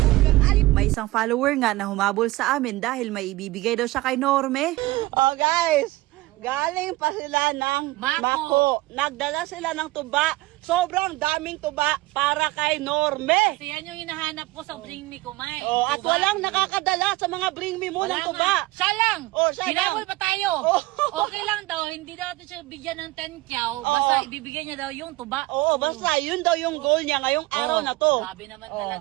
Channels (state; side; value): quieter; left; 19.6 dB